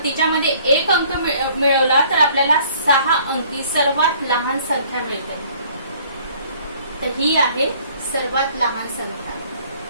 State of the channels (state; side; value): inverted; both; correlation -0.57